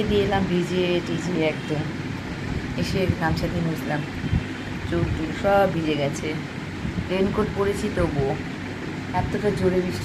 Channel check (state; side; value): identical; both; correlation 1.00